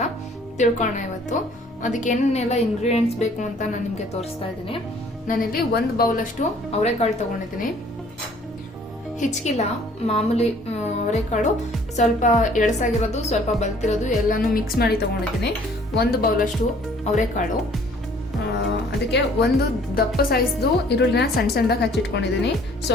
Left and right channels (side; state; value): both; normal; correlation 0.57